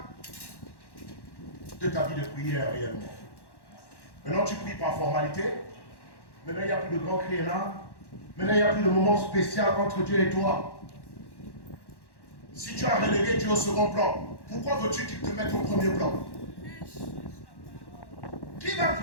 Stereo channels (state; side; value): late; right; 1.1 ms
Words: de ta vie de prière réellement? Maintenant tu pries par formalité. Maintenant il n'y a plus de grand cri là. Maintenant il n'y a plus de moment spécial entre Dieu et toi. Si tu as relégué Dieu au second plan, pourquoi veux-tu qu'il te mette au premier plan? Qui va